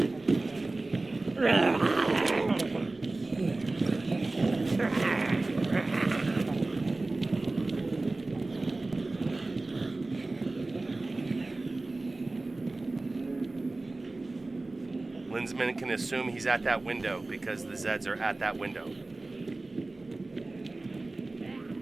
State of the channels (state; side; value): quieter; left; 3.1 dB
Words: Lindzman can assume he's at that window because the Zeds are at that window.